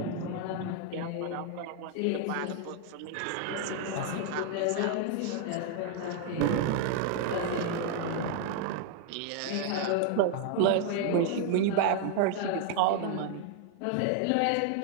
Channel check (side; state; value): both; different; correlation 0.00